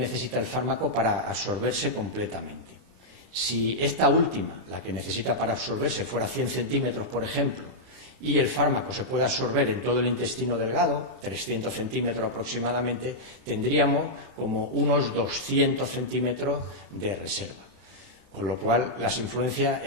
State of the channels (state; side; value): late; left; 32 ms